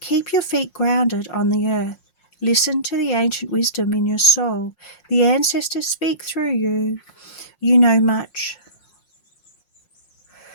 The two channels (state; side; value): late; right; 5.6 ms